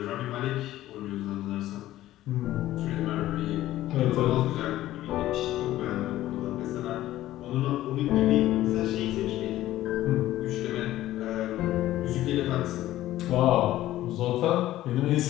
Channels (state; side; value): quieter; right; 14.7 dB